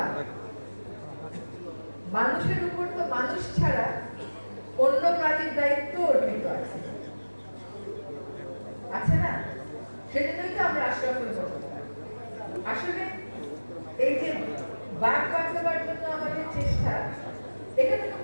মানুষের উপর তো মানুষ ছাড়া অন্য প্রাণীর দায়িত্ব অর্পিত আছে না? সেজন্যই তো আমরা আশরাফুল মখলুকাত। আসলে এই যে বাঘ বাঁচাবার জন্য আমাদের চেষ্টা, এখানে তো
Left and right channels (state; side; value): inverted; both; correlation -1.00